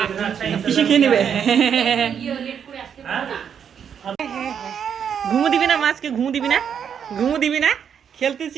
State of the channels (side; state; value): left; quieter; 7.9 dB